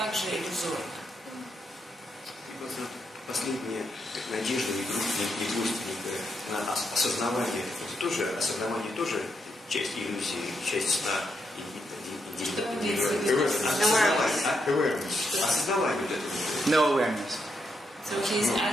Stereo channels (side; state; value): both; normal; correlation 0.81